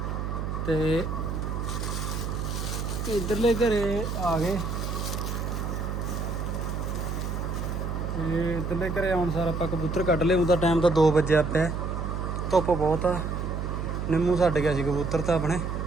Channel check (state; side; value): noise; right; hum, 3 dB below the sound